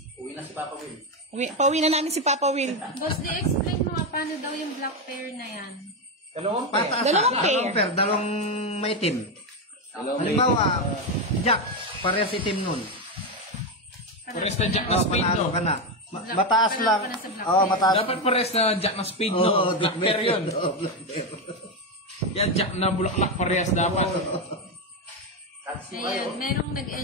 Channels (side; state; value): both; normal; correlation 0.10